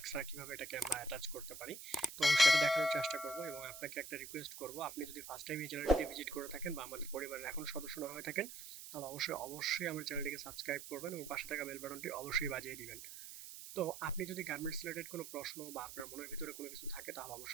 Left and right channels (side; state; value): right; noise; hiss, 11 dB below the sound